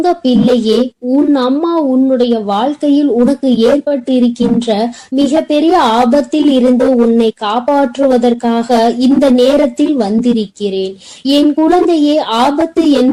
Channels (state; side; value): identical; both; correlation 1.00